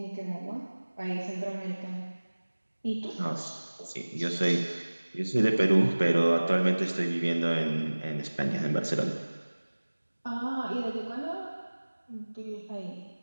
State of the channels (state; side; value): inverted; both; correlation -1.00